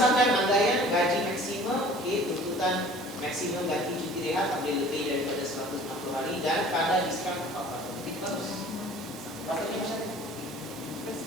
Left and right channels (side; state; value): both; normal; correlation 0.48